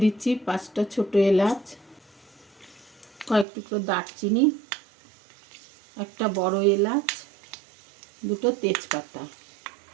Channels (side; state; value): left; drops out; at 3.5 s